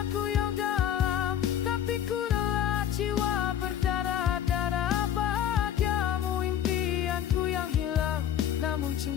yang dalam, tapi ku rela jiwa berdarah-darah. Bahagiamu impianku yang hilang, namun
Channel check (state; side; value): quieter; right; 10.0 dB